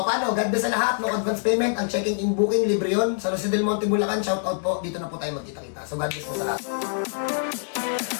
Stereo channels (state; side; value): silent; right; digital silence